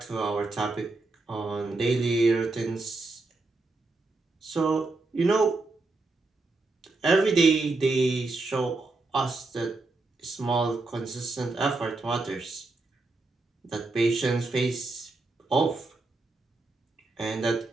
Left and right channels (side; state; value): left; quieter; 3.4 dB